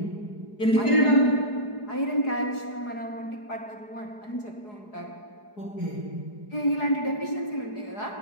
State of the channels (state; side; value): late; right; 4.8 ms